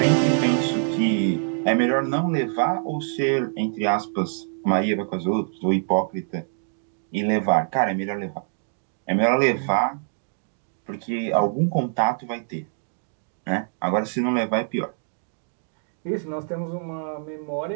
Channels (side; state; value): left; silent; digital silence